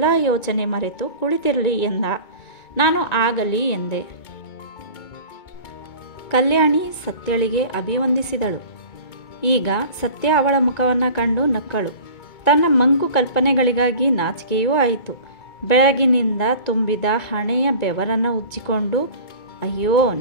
ಯೋಚನೆ ಮರೆತು ಕುಳಿತಿರಲಿ ಎಂದ. ನಾನು ಆಗಲಿ ಎಂದೆ. ಕಲ್ಯಾಣಿ ಸತ್ಯಳಿಗೆ ಅಭಿವಂದಿಸಿದಳು. ಈಗ ಸತ್ಯ ಅವಳ ಮುಖವನ್ನು ಕಂಡು ನಕ್ಕಳು. ತನ್ನ ಮಂಕು ಕಲ್ಪನೆಗಳಿಗಾಗಿ ನಾಚಿಕೆಯೂ ಆಯಿತು. ಬೆಳಗಿನಿಂದ ತುಂಬಿದ ಹಣೆಯ ಬೆವರನ್ನು ಉಜ್ಜಿಕೊಂಡು, ಅಯ್ಯೋ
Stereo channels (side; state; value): right; late; 2.2 ms